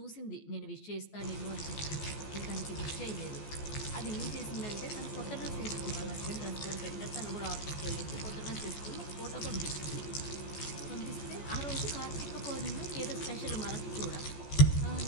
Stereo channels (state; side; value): late; right; 14 ms